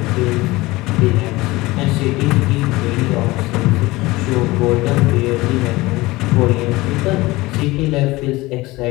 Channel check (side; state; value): right; quieter; 20.3 dB